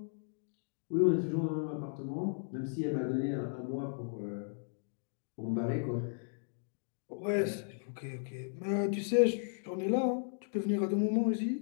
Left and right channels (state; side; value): silent; right; digital silence